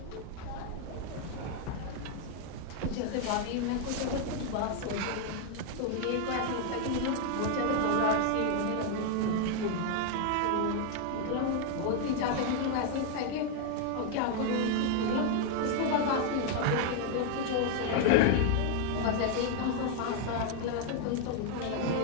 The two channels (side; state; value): both; different; correlation 0.00